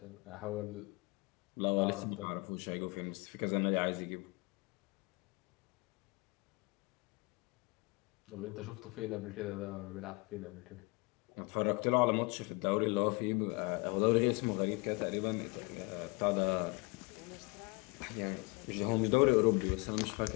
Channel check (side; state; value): right; quieter; 27.8 dB